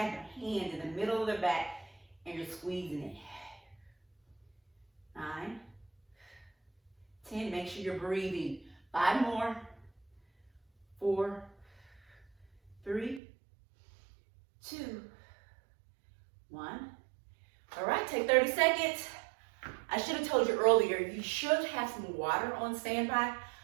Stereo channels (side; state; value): left; drops out; at 13.2 s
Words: their hand in the middle of their back and you're squeezing it. 9, 10, make sure you're breathing. 5 more. 4, 3, 2, 1. All right, take 30 seconds. I should have told you earlier, you should have some water on standby.